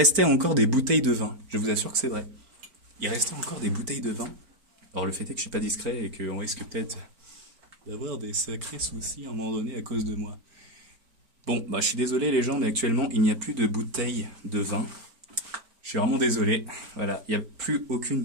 encore des bouteilles de vin. Je vous assure que c'est vrai. Il restait encore des bouteilles de vin. Alors, le fait est que je suis pas discret et qu'on risque peut-être d'avoir des sacrés soucis à un moment donné à cause de moi. Bon, bah je suis désolé les gens, mais actuellement il n'y a plus de bouteilles de vin. Je suis vraiment désolé. Voilà, il n'y a plus aucune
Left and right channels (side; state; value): left; late; 4.4 ms